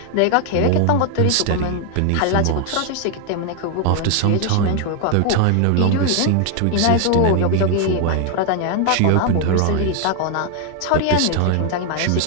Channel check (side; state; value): both; different; correlation 0.00